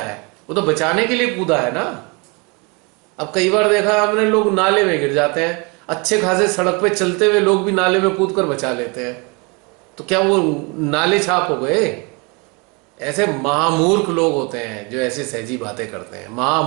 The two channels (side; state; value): left; quieter; 30.0 dB